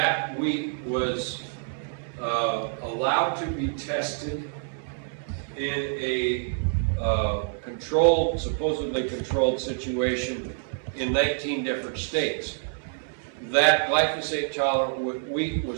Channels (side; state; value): left; silent; 60 dB below the other